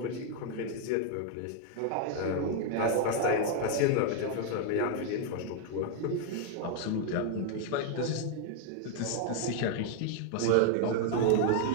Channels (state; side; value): different; both; correlation 0.00